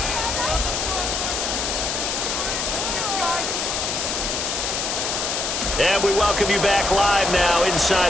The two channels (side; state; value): left; noise; hiss, 1 dB below the sound